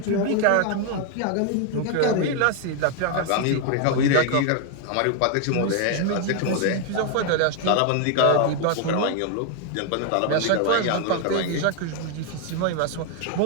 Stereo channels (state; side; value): different; both; correlation 0.00